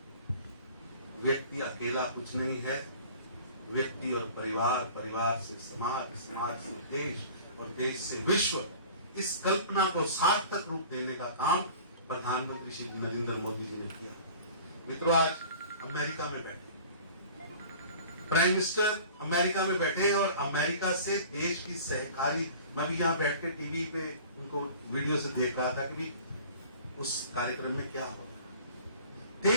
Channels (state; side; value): inverted; both; correlation -0.44